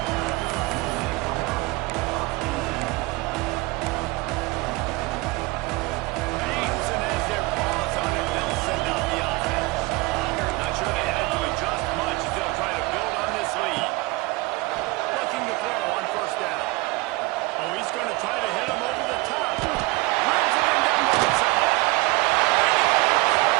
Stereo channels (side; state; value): left; quieter; 22.7 dB